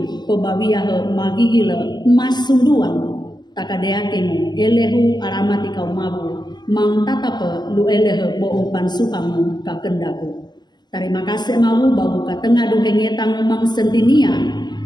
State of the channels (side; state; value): right; late; 0.21 ms